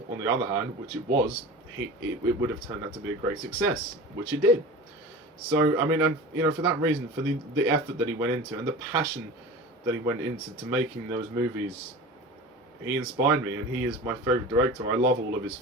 on the other hand, which it was, it would have turned out to be a great success, which it did. So I mean, and for that reason, for the effort that he went into and the passion that he went into to making those movies, he inspired me, and he is my favourite director. I love all of his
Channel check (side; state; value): both; normal; correlation 0.34